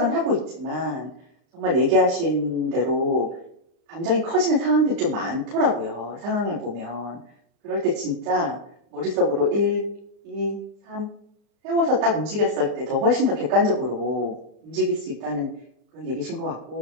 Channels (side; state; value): left; late; 38 ms